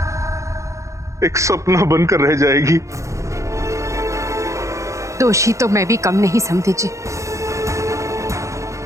एक सपना बनकर रह जाएगी। दोषी तो मैं भी कम नहीं समझी जी।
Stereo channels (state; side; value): late; left; 0.15 ms